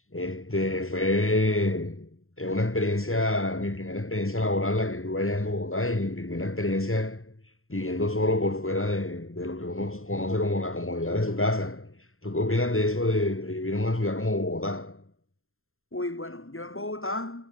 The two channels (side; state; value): right; late; 0.61 ms